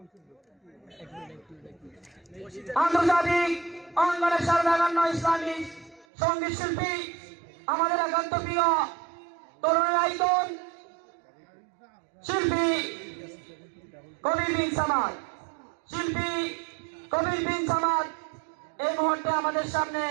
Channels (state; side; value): drops out; left; at 6.1 s